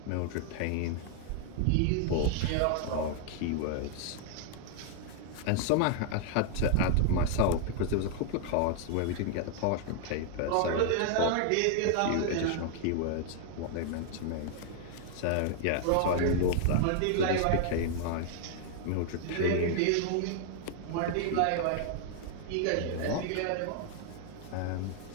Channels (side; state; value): both; different; correlation 0.00